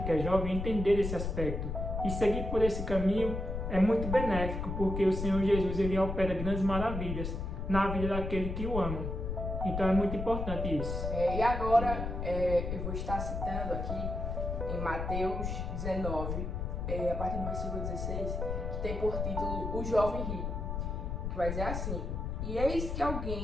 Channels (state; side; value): noise; left; rumble, 3 dB below the sound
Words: que é jovem entender esse aspecto e seguir por esse caminho é muito benéfico, porque o Senhor Jesus ele opera grandes maravilhas na vida daquele que o ama. Então é muito importante isso. E agora eu vou estar citando aqui em Mateus 19, a partir do versículo 16, que tem por título O Jovem Rico, que vai dizer assim: E eis que